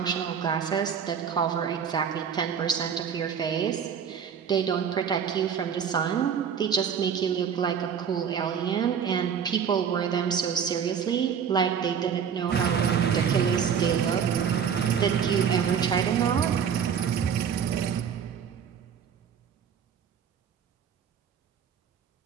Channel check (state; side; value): quieter; left; 7.6 dB